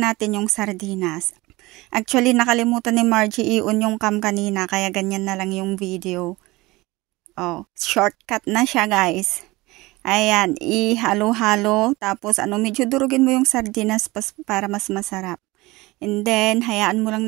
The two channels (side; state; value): left; quieter; 21.1 dB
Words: yung sardinas. Actually, nakalimutan ni Margie i-on yung cam kanina, kaya ganyan na lang yung video. Oh, shortcut na siya, guys. Ayan, ihalo-halo, tapos medyo durugin mo yung sardinas para mas masarap. And then, hayaan mo lang